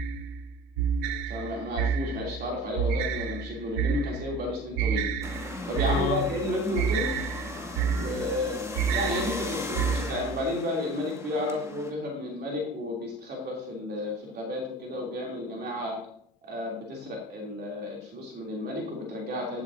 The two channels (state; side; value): normal; both; correlation 0.39